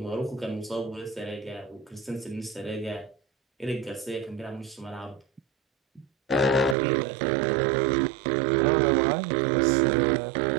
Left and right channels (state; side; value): drops out; left; at 6.8 s